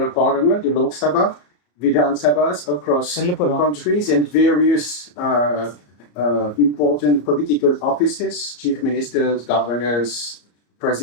parliament, the Lok Sabha, Vidhan Sabhas across the countries, and various important political offices, chief ministers, governors,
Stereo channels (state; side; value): late; right; 34 ms